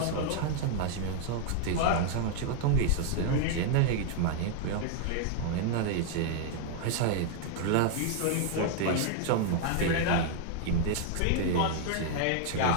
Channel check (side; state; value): both; different; correlation -0.01